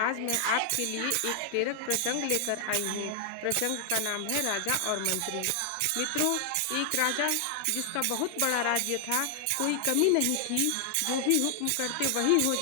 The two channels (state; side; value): different; both; correlation 0.00